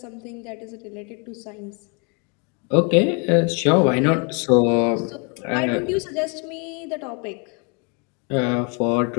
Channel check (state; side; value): quieter; right; 34.9 dB